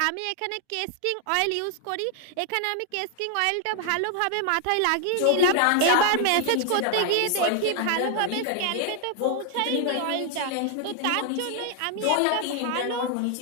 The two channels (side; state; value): both; different; correlation 0.00